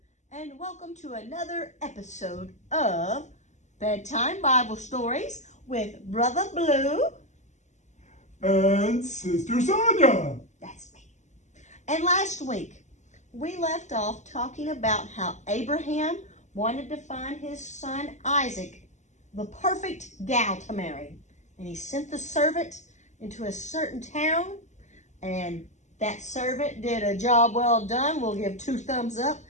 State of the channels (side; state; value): right; late; 0.34 ms